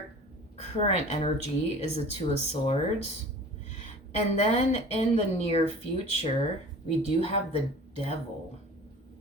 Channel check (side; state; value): both; normal; correlation 0.42